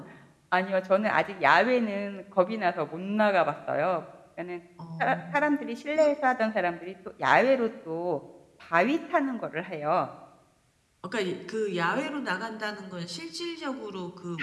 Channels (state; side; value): identical; both; correlation 1.00